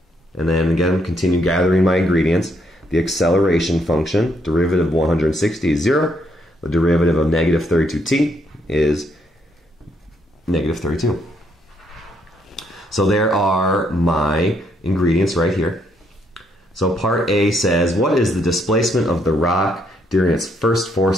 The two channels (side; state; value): both; normal; correlation 0.73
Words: And then again, continue gathering my ingredients. The acceleration function, derivative of 160 is 0. The derivative of negative 32t is negative 32. So there are my ingredients right here. So part A says, what is the displacement of the rock during its first 4